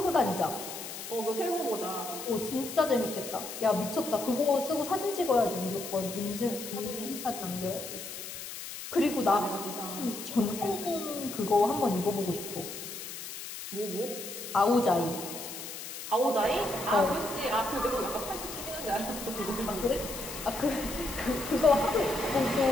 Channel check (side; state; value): left; noise; hiss, 9 dB below the sound